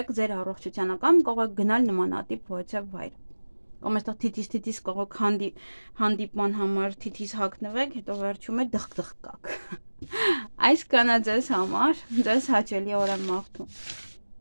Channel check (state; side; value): inverted; both; correlation -1.00